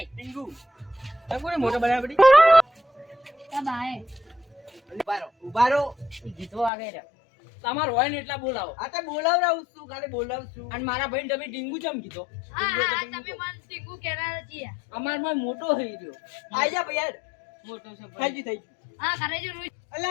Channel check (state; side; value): drops out; right; at 6.7 s